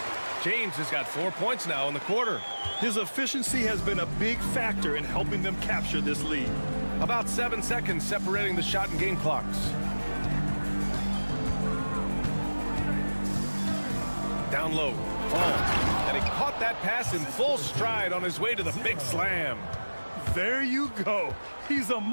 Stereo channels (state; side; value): inverted; both; correlation -1.00